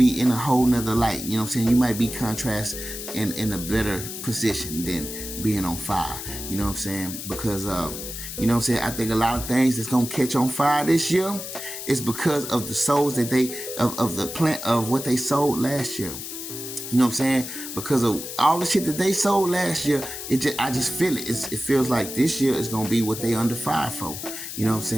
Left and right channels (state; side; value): noise; left; hiss, 8 dB below the sound